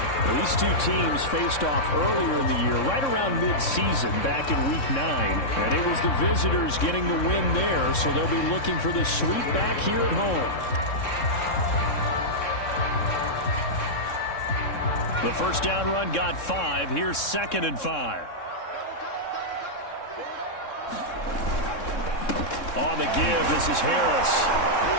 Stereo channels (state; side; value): late; right; 3.6 ms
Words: Well, these two teams faced off earlier in the year, right around mid-season, back in Week 9. And it was the visitors getting the win there, so they'll be looking for the sweep back here at home. The first down run got 5. Here's 2nd and 5. On the give, this is Harris.